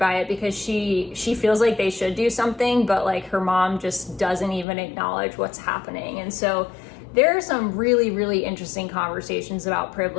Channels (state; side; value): drops out; right; at 4.7 s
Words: it because she feels like they should do something, but like her mom just doesn't even acknowledge what's happening. And so there are some really, really interesting conversations about